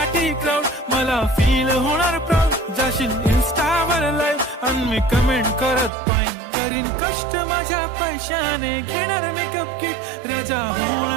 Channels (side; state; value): left; drops out; at 5.9 s